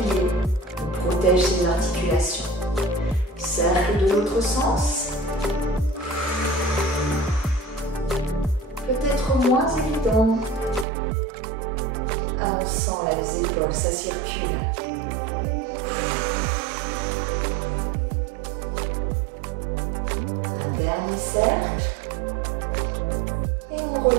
On protège ces articulations. Cercle de l'autre sens. Peut-être moins évident. Ah, on sent là les épaules, ça circule. Un dernier cercle. Et on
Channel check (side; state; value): left; drops out; at 10.9 s